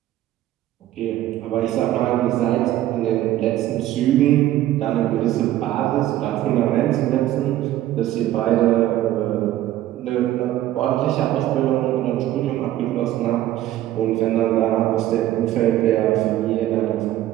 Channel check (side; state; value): left; quieter; 13.8 dB